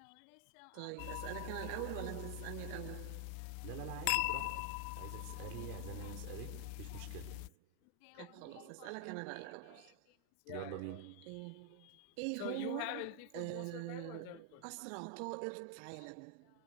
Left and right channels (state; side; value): different; both; correlation 0.00